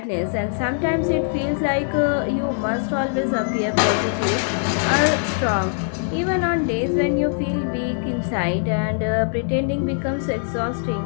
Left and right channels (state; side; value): silent; right; 64 dB below the other